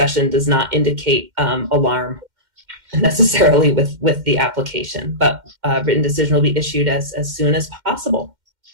does not indicate alarm necessarily with the application, but written decision will be issued as soon as possible.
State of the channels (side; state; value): left; late; 2.1 ms